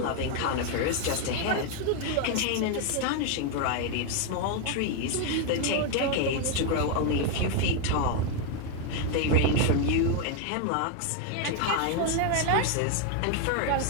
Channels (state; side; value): different; both; correlation 0.01